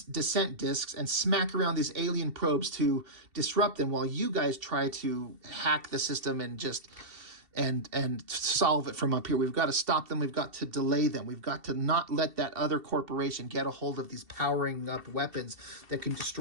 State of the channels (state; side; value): late; left; 2.7 ms